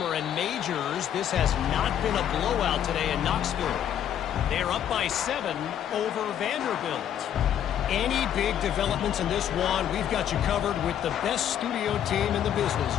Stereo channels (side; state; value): right; quieter; 10.0 dB